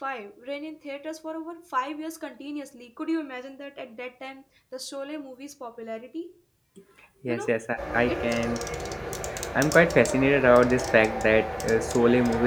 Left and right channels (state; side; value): identical; both; correlation 1.00